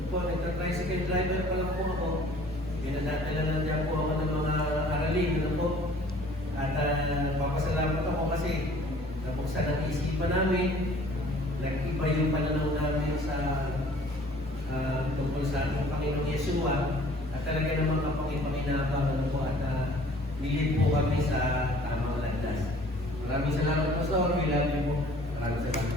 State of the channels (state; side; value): normal; both; correlation 0.52